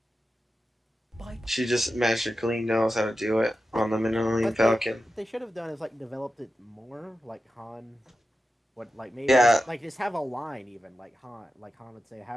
She just magically knows how to do it on the Millennium But Falcon. what they should have done is like developed it more, like Han. What like maybe Yeah. just have a line even like Han would say,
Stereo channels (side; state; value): both; normal; correlation 0.92